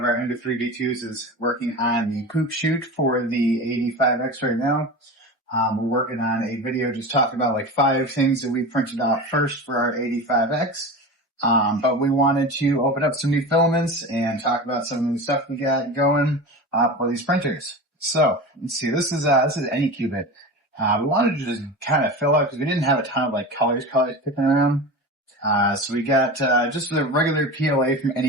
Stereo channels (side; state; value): both; normal; correlation 0.29